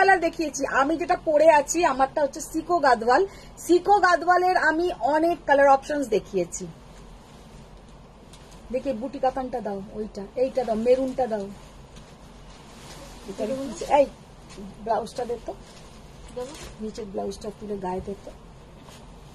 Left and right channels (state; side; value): identical; both; correlation 1.00